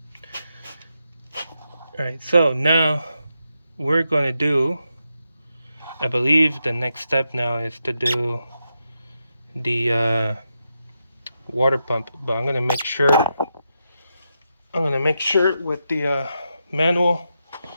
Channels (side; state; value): both; inverted; correlation -0.85